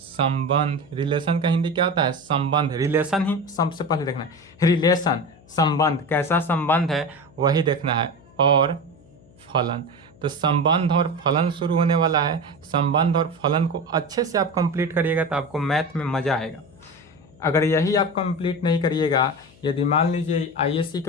रिलेशन का हिंदी क्या होता है, संबंध। रिलेशन ही सबसे पहले देखना है, रिलेशन संबंध, कैसा संबंध है वही देखना है। और फलन, तो संबंध और फलन शुरू होने वाला है। संबंध और फलन को अच्छे से आप कंप्लीट करिएगा तो आपको मैथ में मजा आएगा। अगर यही आप कंप्लीट नहीं करिएगा, यदि मान लीजिए आईएससी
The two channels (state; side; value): noise; left; hum, 26 dB below the sound